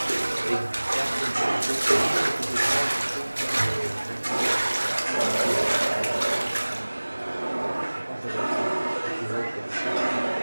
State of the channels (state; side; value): inverted; both; correlation -1.00